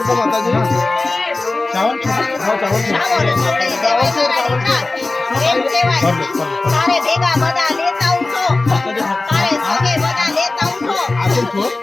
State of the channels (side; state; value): right; quieter; 3.2 dB